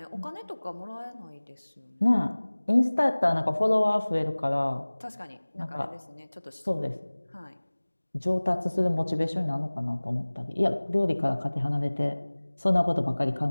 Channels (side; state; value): both; inverted; correlation -1.00